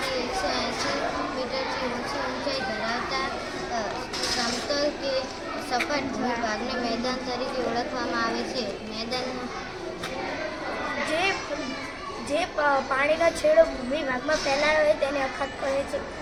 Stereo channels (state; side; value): identical; both; correlation 1.00